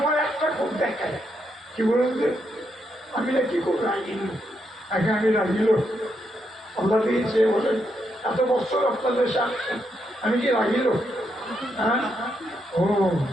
একটা খুব দেখায় কি বলুন যে আমি না কি খুব রাগিল, আগে আমি রাগিল আল্লাহ দিয়েছে বলেন এত বছর আপনাদের সাথে আমি কি রাগিল? হ্যাঁ ও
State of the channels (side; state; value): both; normal; correlation 0.80